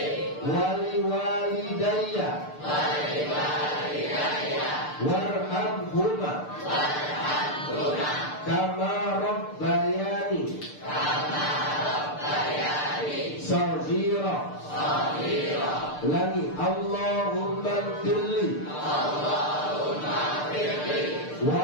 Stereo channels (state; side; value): late; right; 6.7 ms